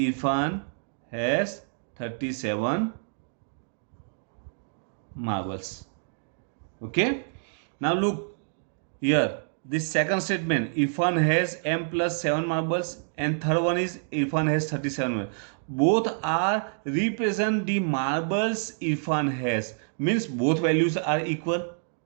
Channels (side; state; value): left; silent; digital silence